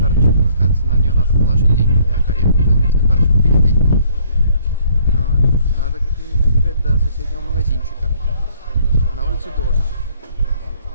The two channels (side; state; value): both; inverted; correlation -0.63